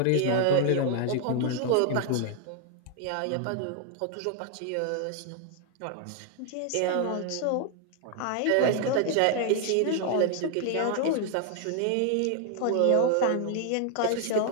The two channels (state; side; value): different; both; correlation 0.00